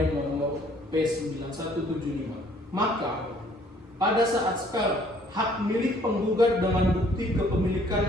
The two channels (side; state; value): both; normal; correlation 0.60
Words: nomor P9175. Maka pada saat sekarang hak milik penggugat dengan bukti kepemilikan